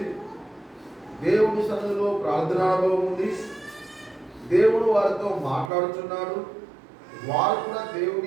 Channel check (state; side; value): drops out; left; at 5.7 s